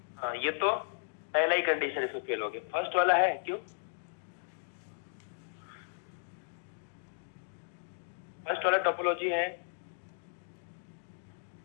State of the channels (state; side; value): silent; right; digital silence